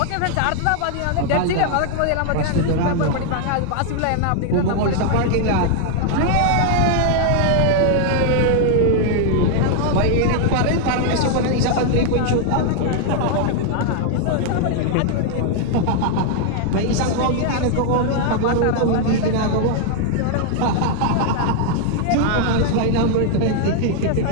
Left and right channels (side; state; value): both; different; correlation 0.00